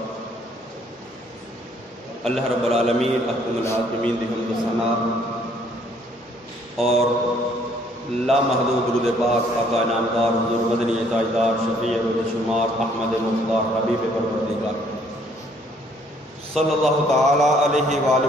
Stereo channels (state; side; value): normal; both; correlation 0.63